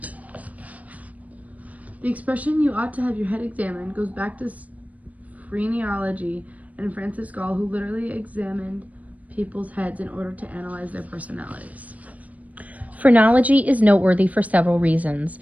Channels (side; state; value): left; late; 0.071 ms